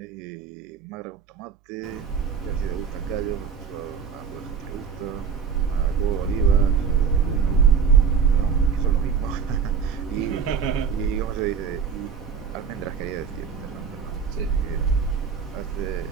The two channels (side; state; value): left; quieter; 6.5 dB